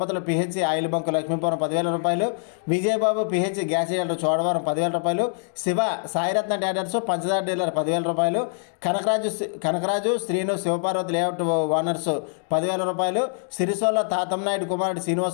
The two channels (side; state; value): right; silent; digital silence